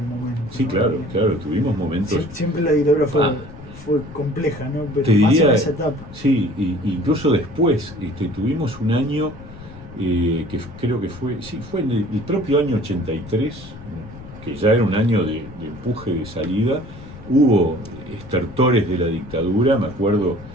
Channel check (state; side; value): noise; left; rumble, 16 dB below the sound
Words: momento. Sí, ¿no? Claro, tuvimos momentos... Siempre la dictadura fue compleja, ¿no? Pero te más diría, en esa etapa. Sí, incluso después tuvimos un año que creo que fue en el propio año 83, que ya era un año de empuje, de salida. Hubo estertores de la dictadura. Me acuerdo